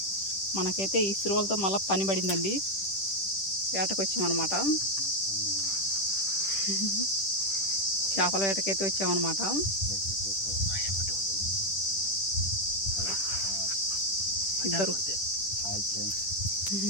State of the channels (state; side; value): late; right; 10 ms